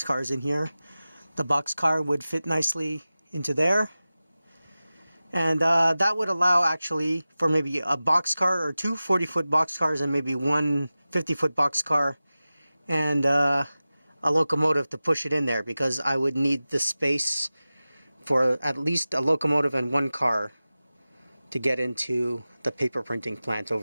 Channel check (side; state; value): both; inverted; correlation -0.96